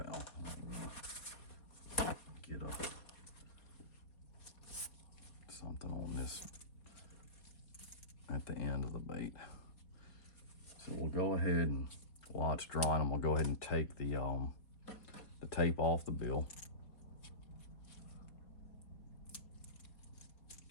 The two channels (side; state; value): right; late; 4.2 ms